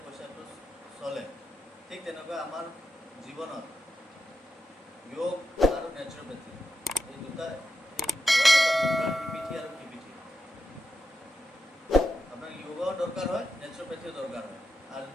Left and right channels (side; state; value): both; normal; correlation 0.87